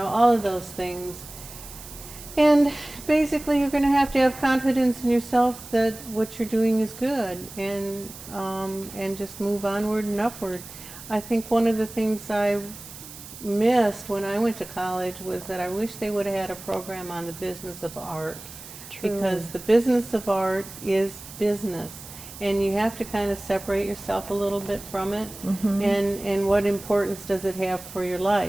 of those things. And basically you're going to have confidence in yourself that what you're doing is good and just move onward and upward. I think one of the things I missed when I went to college was that I wish they would have had a program on the business of art. Because the business of art is business, and you have to kind of separate yourself a little bit from it, and what importance does it have for your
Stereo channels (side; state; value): right; noise; hiss, 15 dB below the sound